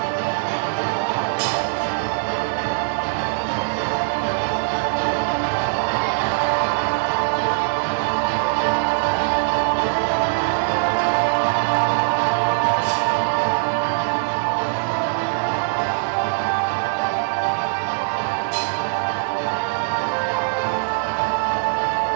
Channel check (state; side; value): silent; left; digital silence